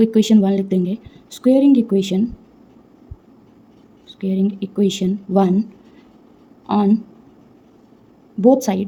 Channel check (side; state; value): both; identical; correlation 1.00